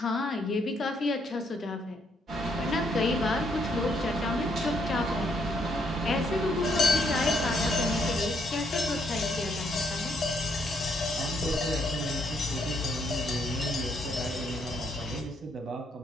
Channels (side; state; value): both; normal; correlation 0.72